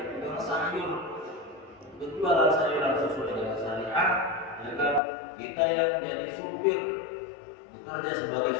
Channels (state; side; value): drops out; right; at 5.0 s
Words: tukang sayur, berjualan sayuran sesuai dengan syariat, ya kan? Kita yang jadi supir, bekerja sebagai